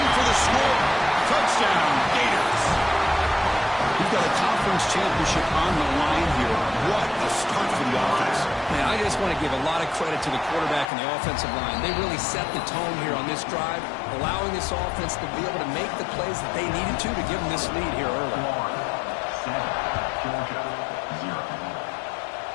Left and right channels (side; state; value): right; drops out; at 10.9 s